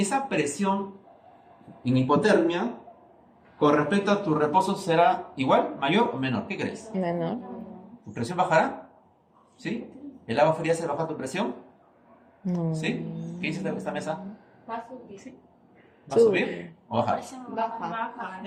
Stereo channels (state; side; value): identical; both; correlation 1.00